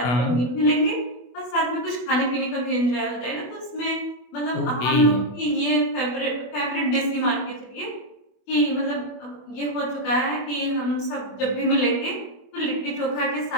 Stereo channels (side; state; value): right; late; 24 ms